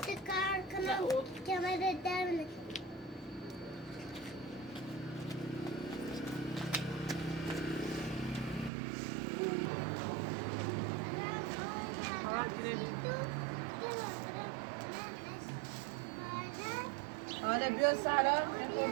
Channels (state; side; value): drops out; left; at 8.7 s